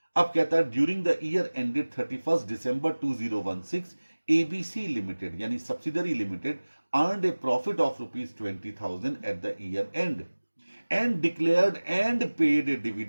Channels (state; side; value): inverted; both; correlation -1.00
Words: अब कहता है during the year ended 31 December 2016 ABC limited यानी subsidiary limited earned a profit of ₹20,000 at the year end and declared and paid a